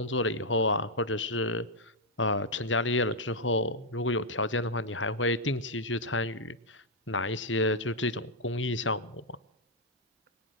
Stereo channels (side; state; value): both; normal; correlation -0.04